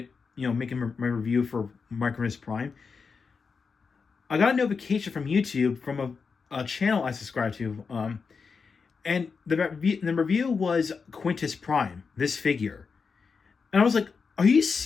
making my review for Micronus Prime, I got a notification from YouTube from a channel I subscribe to, and the review was Quintus Prime, this figure. And I was like, are you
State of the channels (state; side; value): quieter; right; 5.3 dB